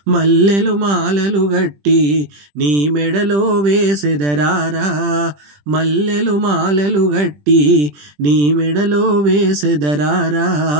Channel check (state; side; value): late; left; 20 ms